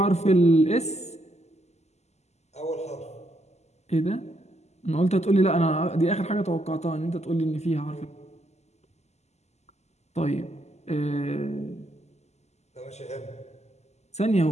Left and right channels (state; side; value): late; right; 0.32 ms